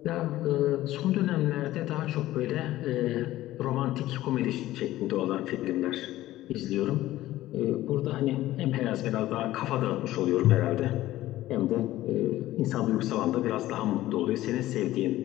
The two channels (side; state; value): right; quieter; 15.4 dB